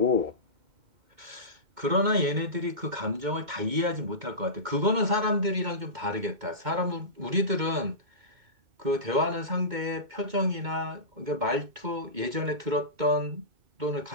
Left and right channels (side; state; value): left; late; 2.2 ms